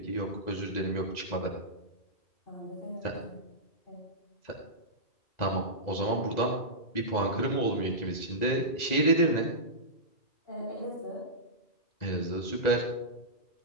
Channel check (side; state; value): right; late; 2.0 ms